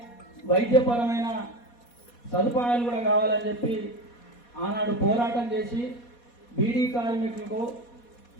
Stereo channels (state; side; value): late; right; 4.2 ms